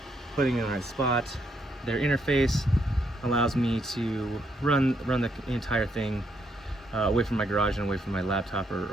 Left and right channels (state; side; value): normal; both; correlation 0.75